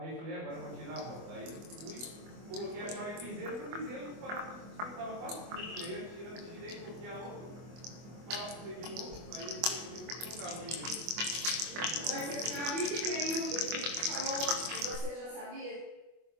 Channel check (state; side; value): late; left; 24 ms